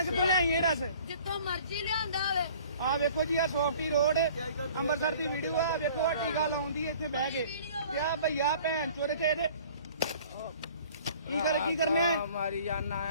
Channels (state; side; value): inverted; both; correlation -0.50